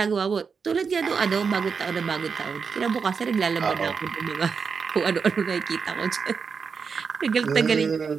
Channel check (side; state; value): left; quieter; 5.7 dB